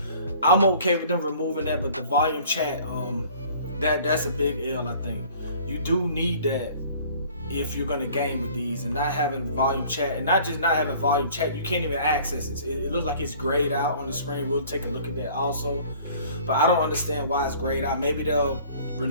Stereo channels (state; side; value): inverted; both; correlation -0.51